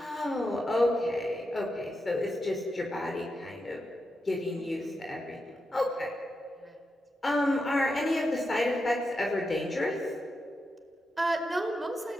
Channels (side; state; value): both; normal; correlation 0.87